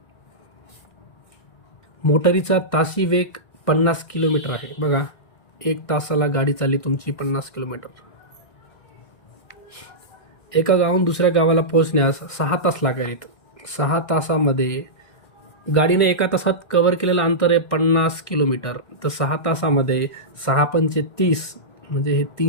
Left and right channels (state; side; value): late; right; 1.6 ms